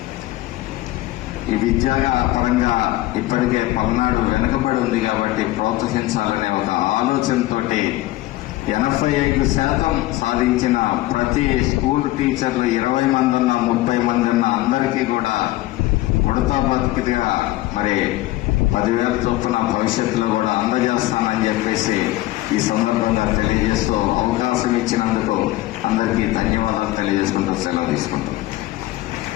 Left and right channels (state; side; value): quieter; right; 17.3 dB